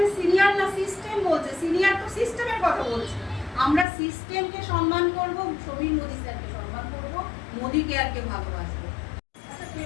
সিনিয়র না সিস্টেম বলছে, সিনিয়র তো সিস্টেমের কথা বলছে। আমরা সিস্টেমকে সম্মান করব, সমীর মোদি স্যারকে সম্মান করব, মোদি কেয়ারকে ভালোবাসবো। আচ্ছা, তুমি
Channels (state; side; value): drops out; right; at 3.9 s